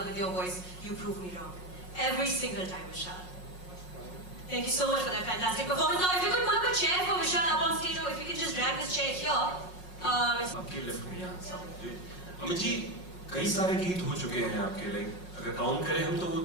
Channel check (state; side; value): late; right; 5.5 ms